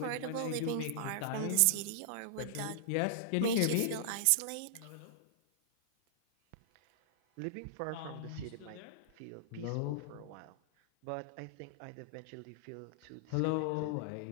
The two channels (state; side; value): different; both; correlation -0.02